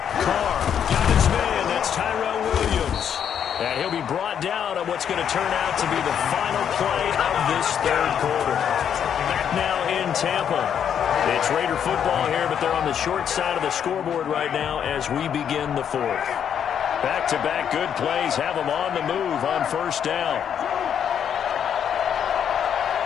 Carr got his man. That's Tyrell Williams. And he'll be brought down on what's going to turn out to be the final play of this 3rd quarter. Now in Tampa. It's Raider football here, but they're on the short side of the scoreboard right now as we begin the 4th. Back-to-back good plays have them on the move on 1st down.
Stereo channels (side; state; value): right; quieter; 8.6 dB